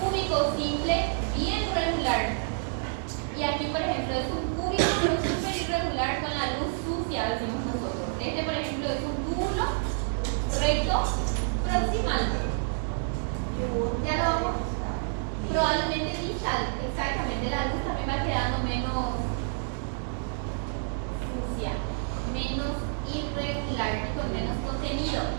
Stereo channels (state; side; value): silent; left; digital silence